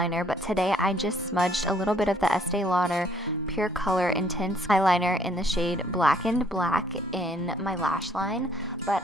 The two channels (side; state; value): both; normal; correlation 0.64